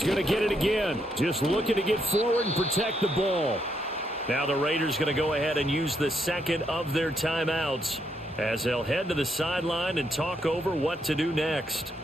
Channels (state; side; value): normal; both; correlation 0.77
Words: going to get it again. Just looking to get forward and protect the ball. Now the Raiders going to go ahead and use the 2nd of their timeouts as they'll head to the sideline and talk over what to do next.